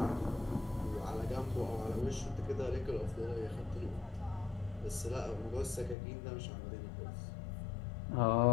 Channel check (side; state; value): right; drops out; at 6.0 s